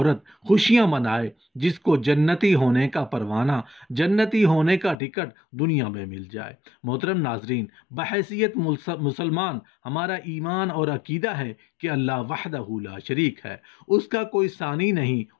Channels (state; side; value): drops out; right; at 5.0 s